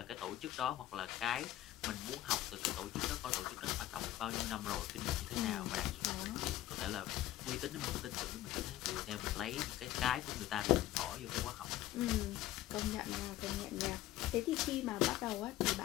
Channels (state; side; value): quieter; right; 14.4 dB